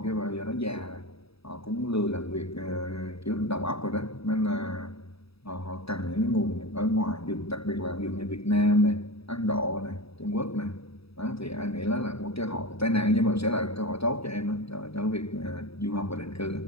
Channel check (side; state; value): right; late; 0.77 ms